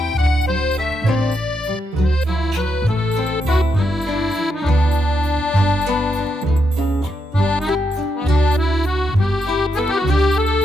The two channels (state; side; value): normal; both; correlation 0.82